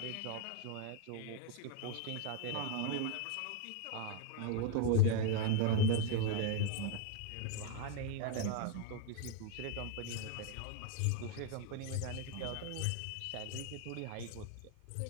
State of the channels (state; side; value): different; both; correlation 0.00